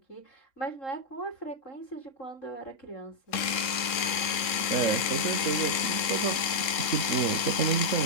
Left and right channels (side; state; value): right; late; 3.7 ms